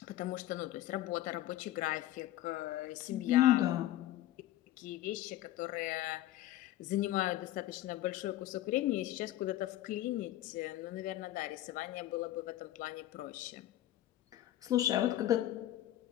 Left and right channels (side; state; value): right; quieter; 14.2 dB